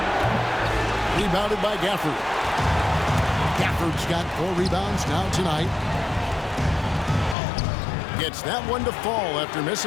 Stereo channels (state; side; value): drops out; right; at 7.4 s